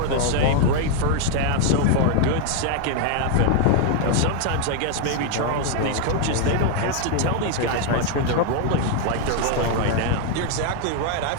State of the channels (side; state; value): both; different; correlation 0.01